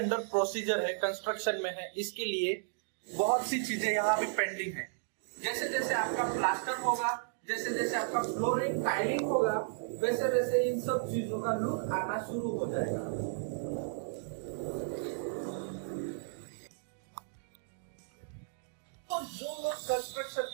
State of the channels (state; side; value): silent; left; digital silence